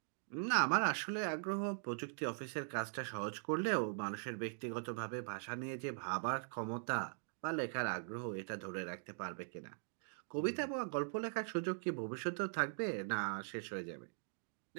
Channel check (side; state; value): left; silent; digital silence